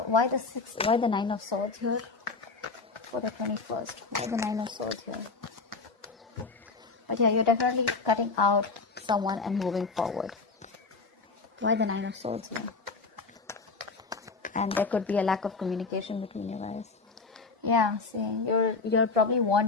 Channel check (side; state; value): right; quieter; 4.2 dB